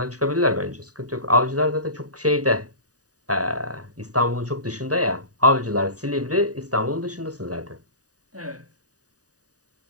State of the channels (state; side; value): late; left; 0.67 ms